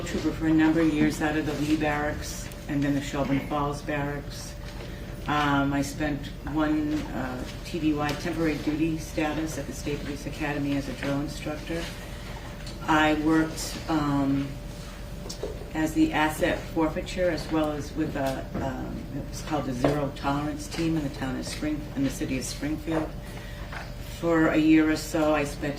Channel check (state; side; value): identical; both; correlation 1.00